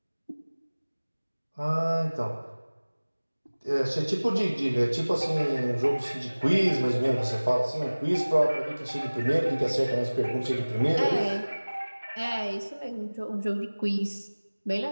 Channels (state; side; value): inverted; both; correlation -1.00